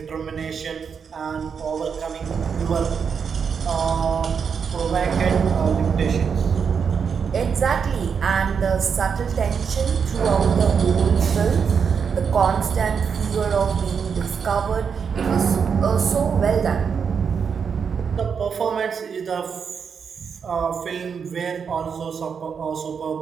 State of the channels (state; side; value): quieter; left; 6.5 dB